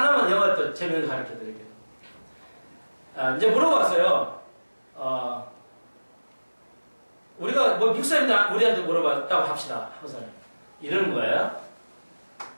영어 또 재미있는 거 가르쳐 드릴게요. 이제 물어봤어요. 우리가 뭐 미국 사람이 우리한테 물어봤다고 합시다. 항상 이러는 거예요.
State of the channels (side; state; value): both; inverted; correlation -1.00